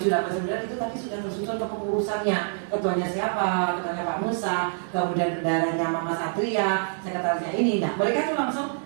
7, 8, 9 itu tadi sudah tersusun kepengurusannya. Ketuanya siapa? Ketuanya Pak Musa, kemudian bendaranya Mama Satria, sekretarisnya ini. Nah, mereka tuh langsung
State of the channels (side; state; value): left; silent; digital silence